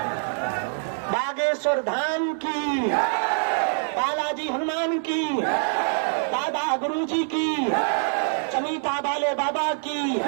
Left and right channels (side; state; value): left; silent; digital silence